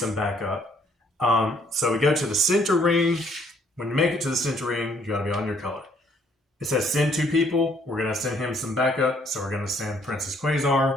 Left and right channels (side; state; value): both; normal; correlation 0.65